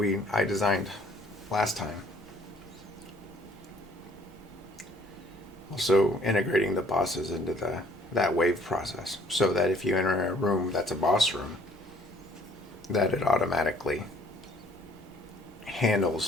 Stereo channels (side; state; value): both; normal; correlation 0.59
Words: I designed last time. Also integrating the bosses into that wave process, so that if you enter a room that's a boss room, that it automatically